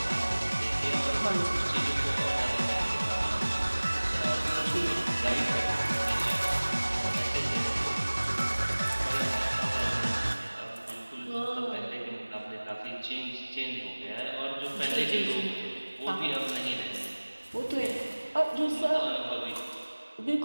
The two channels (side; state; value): both; inverted; correlation -1.00